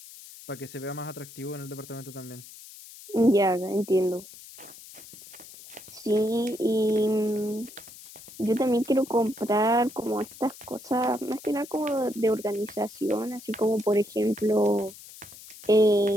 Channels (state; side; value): noise; left; hiss, 17 dB below the sound